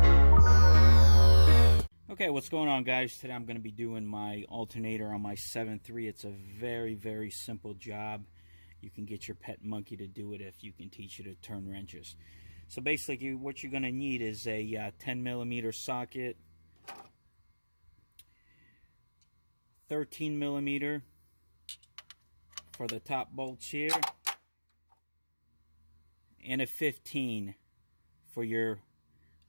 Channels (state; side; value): inverted; both; correlation -1.00